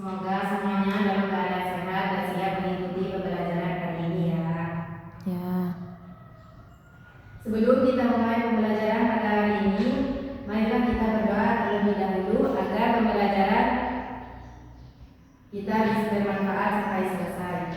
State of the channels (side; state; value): both; identical; correlation 1.00